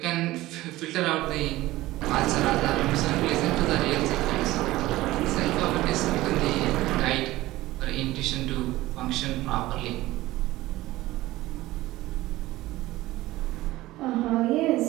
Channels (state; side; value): quieter; left; 17.4 dB